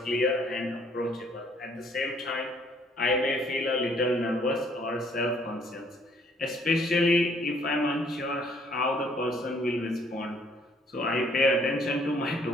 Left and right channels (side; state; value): both; normal; correlation 0.63